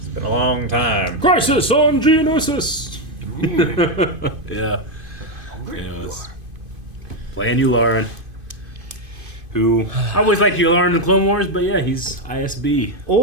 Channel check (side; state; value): left; late; 2.5 ms